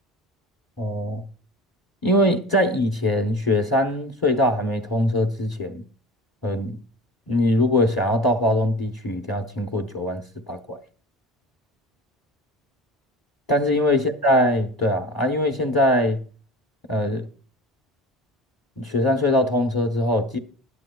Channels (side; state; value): both; normal; correlation 0.37